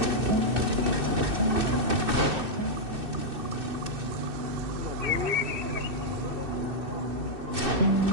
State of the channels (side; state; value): left; late; 2.6 ms